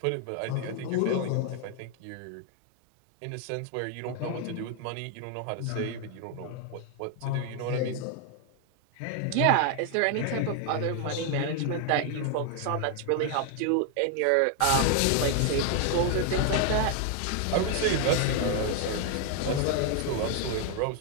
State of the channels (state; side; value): different; both; correlation 0.00